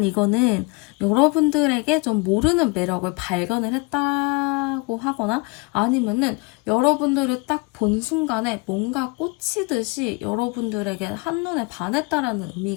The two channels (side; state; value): right; quieter; 27.8 dB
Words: 이거는 여러분들에게 좀 모르는 매력을 발견을 했다고 하거나 아니면은 여러분들을 딱 본 순간에 뭔가 꽂히듯이 여러분들에게 한눈에 반했다라는